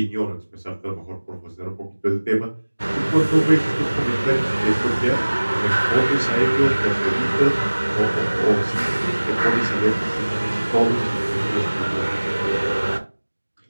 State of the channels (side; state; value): both; inverted; correlation -1.00